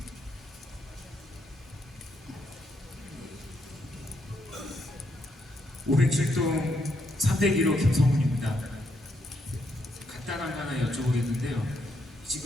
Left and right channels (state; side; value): normal; both; correlation 0.77